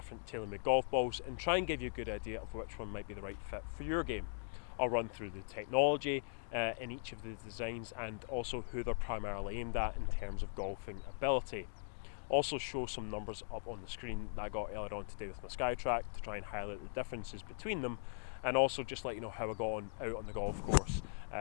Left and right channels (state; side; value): silent; right; digital silence